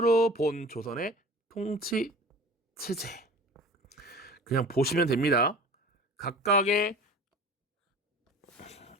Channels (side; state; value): both; normal; correlation 0.41